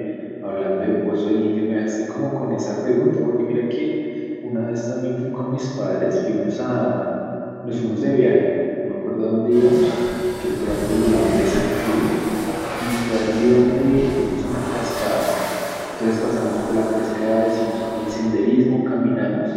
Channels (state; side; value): identical; both; correlation 1.00